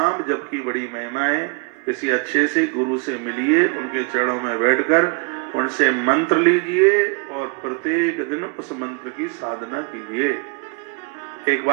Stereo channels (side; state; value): left; quieter; 34.0 dB